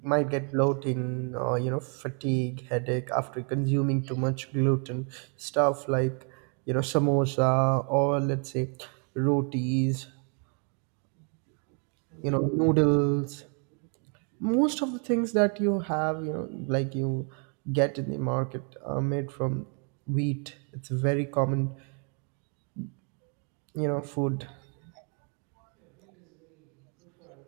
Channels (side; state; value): left; quieter; 39.5 dB